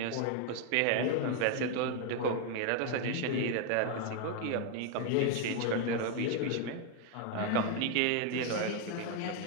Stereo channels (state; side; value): different; both; correlation 0.01